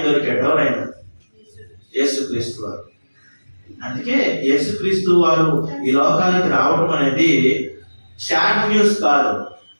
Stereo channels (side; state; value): both; inverted; correlation -1.00